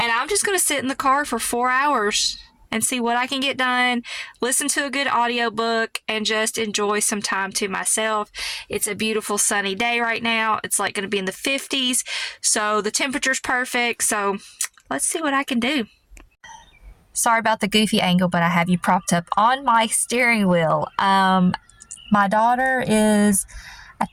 I'm just going to sit in the car for 4 hours and see what I can get done, listen to a good audiobook, and just enjoy some time to myself. It's a beautiful sunny day right now. It's like going to be in the 50s, so the temperature's perfect. So let's see what I can do. Sorry about the goofy angle, but I have you propped up on my steering wheel. My daughter is, I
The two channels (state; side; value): identical; both; correlation 1.00